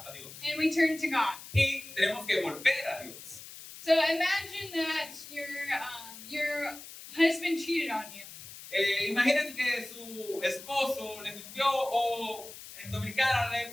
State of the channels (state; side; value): noise; left; hiss, 14 dB below the sound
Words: a Dios. And we turn to God. Y tenemos que volver a Dios. So imagine that your husband cheated on you. Imagínense que su esposo le mintió o en Dominicana le